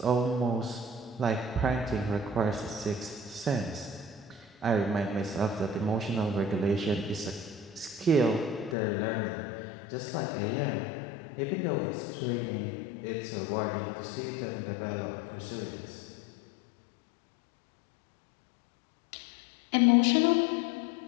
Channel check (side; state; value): right; drops out; at 8.8 s